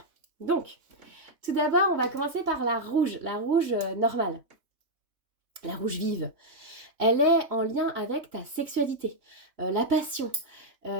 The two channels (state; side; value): late; left; 3.2 ms